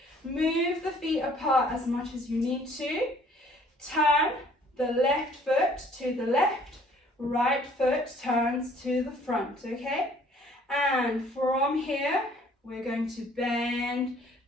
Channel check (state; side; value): normal; both; correlation 0.58